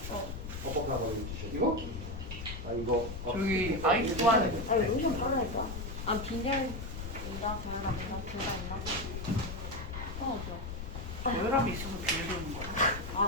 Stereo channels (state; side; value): noise; left; rumble, 7 dB below the sound